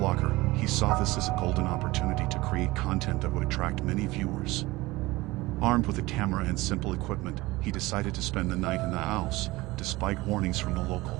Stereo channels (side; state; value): left; quieter; 20.3 dB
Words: he saw this as a golden opportunity to create content that would attract many viewers. Armed with a camera and simple equipment, he decided to spend the night in the house, despite warnings from the